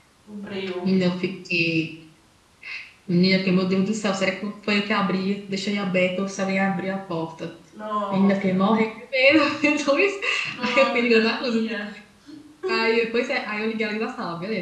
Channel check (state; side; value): identical; both; correlation 1.00